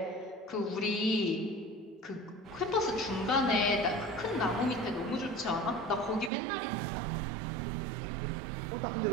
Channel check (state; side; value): drops out; left; at 6.3 s